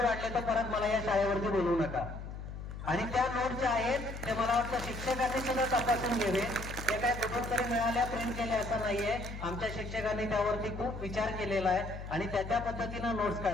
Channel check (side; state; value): left; noise; hum, 9 dB below the sound